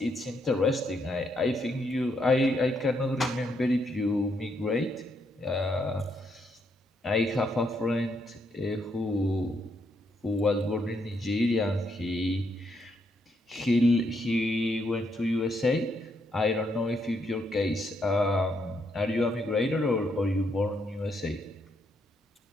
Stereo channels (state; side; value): normal; both; correlation 0.76